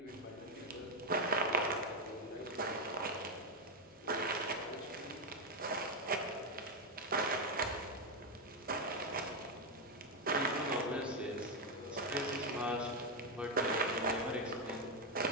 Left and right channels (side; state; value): both; normal; correlation 0.04